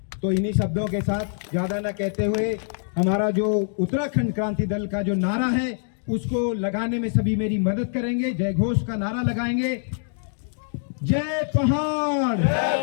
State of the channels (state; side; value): silent; right; digital silence